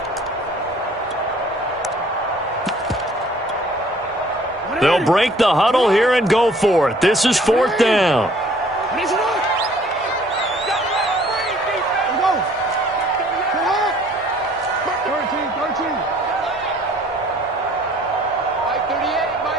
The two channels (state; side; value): normal; both; correlation 0.56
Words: They'll break the huddle here and go for it. This is 4th down.